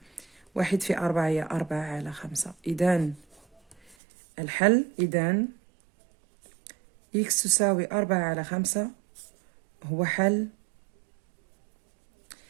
1 في 4 هي 4 على 5. إذا الحل، إذا إكس تساوي 4 على 5 هو حل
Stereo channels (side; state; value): left; drops out; at 4.0 s